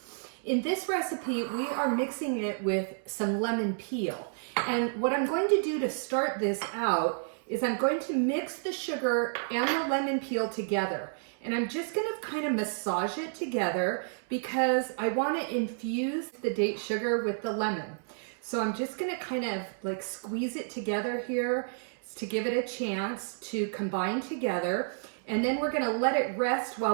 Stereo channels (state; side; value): silent; left; 57 dB below the other